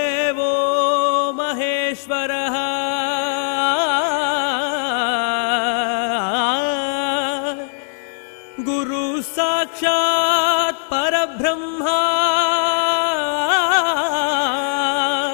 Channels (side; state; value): right; silent; digital silence